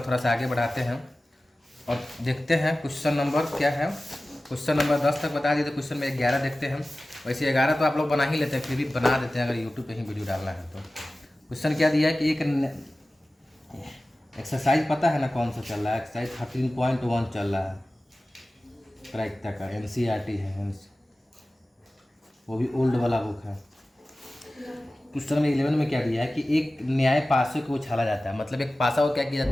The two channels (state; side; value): normal; both; correlation 0.96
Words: सा आगे बढ़ाते हैं और देखते हैं क्वेश्चन नंबर क्या है। क्वेश्चन नंबर 10 तक बता दिए तो क्वेश्चन में 11 देखते हैं। वैसे 11 तो आप लोग बना ही लेते हैं, फिर भी बना देते हैं अगर यूट्यूब पे ही वीडियो डालना है तो। क्वेश्चन क्या दिया है कि एक एक्सरसाइज पता है ना कौन सा चल रहा है, एक्सरसाइज 13.1 चल रहा है प्रायिकता का, NCERT है, वो भी ओल्ड वाला बुक है। क्वेश्चन में 11 में क्या दिया है कि एक न्याय पासे को उछाला जाता है, मतलब एक पासा को क्या किया